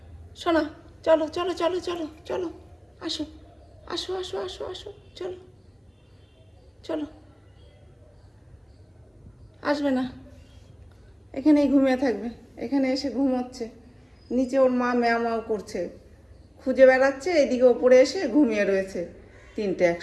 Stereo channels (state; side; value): identical; both; correlation 1.00